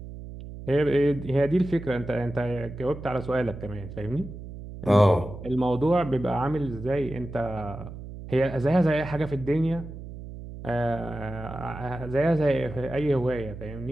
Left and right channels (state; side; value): noise; right; hum, 12 dB below the sound